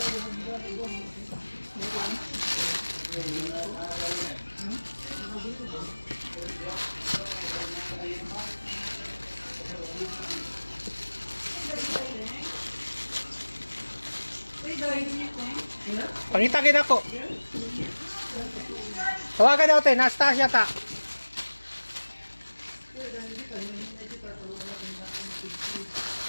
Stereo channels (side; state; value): both; inverted; correlation -1.00